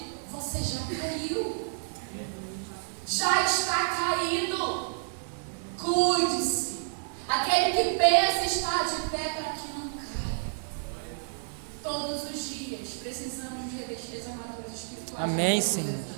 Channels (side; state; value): left; silent; digital silence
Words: você já caiu. Já está caído. Cuide-se. Aquele que pensa estar de pé para que não caia. Todos os dias precisamos nos revestir das armaduras espirituais. Amém, Senhor.